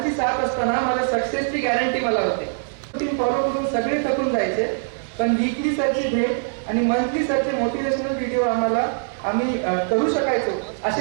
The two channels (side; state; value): left; silent; 64 dB below the other